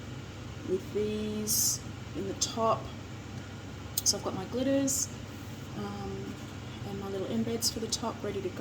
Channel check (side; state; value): both; identical; correlation 1.00